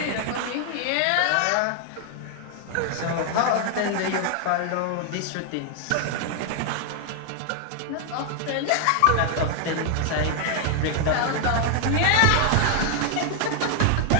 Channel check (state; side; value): different; both; correlation 0.00